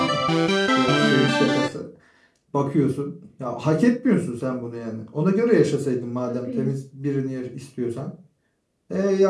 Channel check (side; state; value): both; identical; correlation 1.00